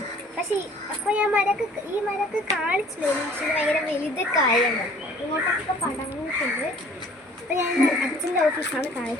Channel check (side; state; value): both; normal; correlation 0.52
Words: പക്ഷേ അപ്പോൾ ഞാൻ ഈ മരക്ക് കാണിച്ചില്ലായിരുന്നു. പക്ഷേ ഇത് ഭയങ്കര വലുതൊക്കെ ആയിരുന്നു. ഇങ്ങോട്ടൊക്കെ പടങ്ങിയിട്ടുണ്ട്. അപ്പോൾ ഞാൻ അച്ഛൻ്റെ ഓഫീസാണ്